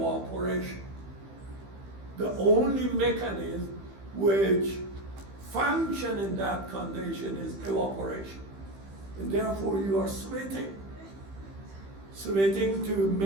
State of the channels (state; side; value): late; left; 15 ms